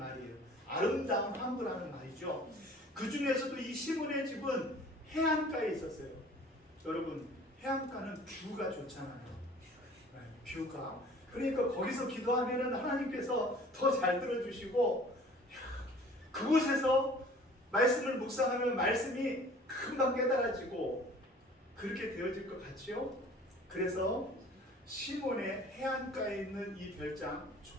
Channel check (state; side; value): normal; both; correlation 0.49